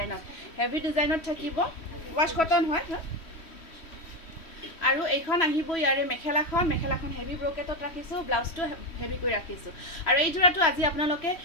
ডিজাইনত থাকিব ৱাছ কটন হয় আৰু এইখন আহিব ইয়াৰে মেখেলাখন হেভি ব্ৰকেটত ৰাখিছোঁ ব্লাউজটো হেভি কৰি ৰাখিছোঁ আৰু এই যোৰাটো আজি আপোনালোকে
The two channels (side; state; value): right; late; 3.0 ms